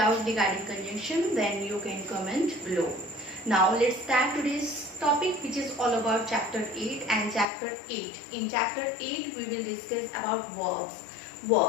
regarding conjunction, then you can comment below. Now let's start today's topic, which is all about chapter 8 and chapter 8. In chapter 8 we will discuss about verbs.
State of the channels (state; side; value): drops out; right; at 7.5 s